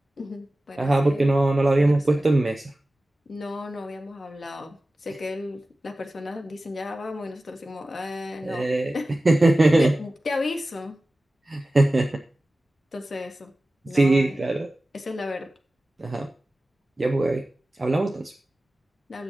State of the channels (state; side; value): normal; both; correlation 0.96